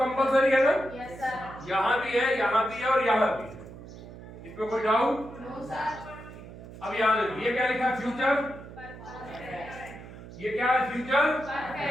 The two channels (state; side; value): noise; right; hum, 15 dB below the sound